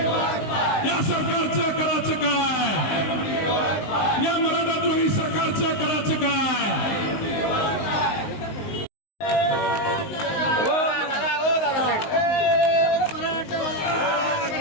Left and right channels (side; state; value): right; late; 19 ms